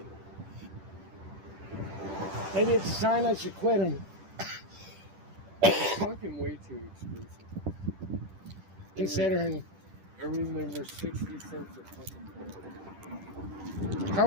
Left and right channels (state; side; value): late; left; 10 ms